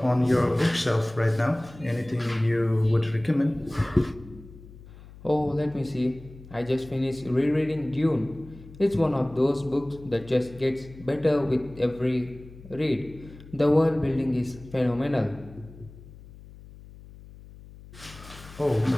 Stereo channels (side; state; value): left; noise; hum, 19 dB below the sound